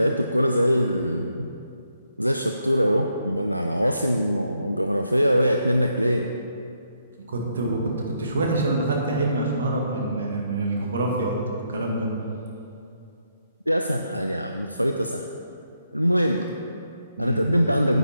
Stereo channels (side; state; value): both; inverted; correlation -0.78